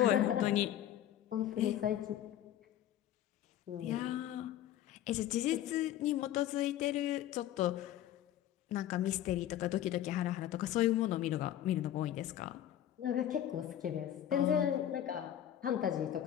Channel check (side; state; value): right; quieter; 11.7 dB